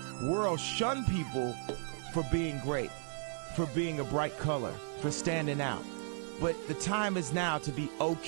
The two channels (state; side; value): silent; left; 54 dB below the other